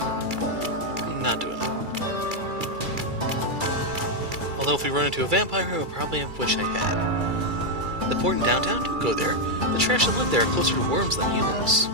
I'm not doing it. Although if we run into a vampire, I'll probably wish I had. The port in downtown? Don't go there. The trash that live there are closer to worms than humans.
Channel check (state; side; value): late; left; 2.3 ms